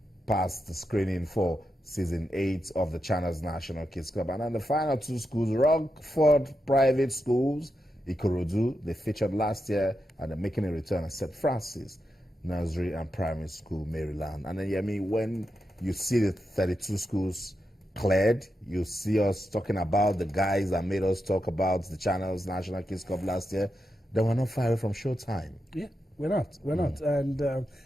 passed the screening for Season 8 of the Channels National Kids Club. And then the final two schools, Rockford Private Schools, Ikorodu, they featured last year and they're making a return at St. Francis Nursery and Primary School, Maryland. And then, when you see the 32 schools cleared, you see us talking about the guys that made us talk about the Channels National Kids Cup last year. They were not far away from showtime. Yeah, we're not. And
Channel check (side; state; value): both; normal; correlation 0.87